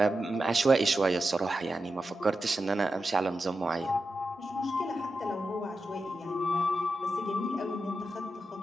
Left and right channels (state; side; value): normal; both; correlation 0.90